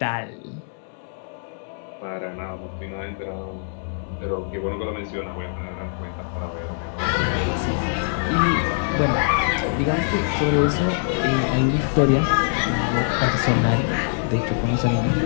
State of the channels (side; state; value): right; silent; digital silence